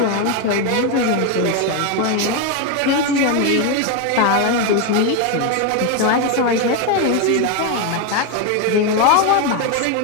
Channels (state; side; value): different; both; correlation 0.02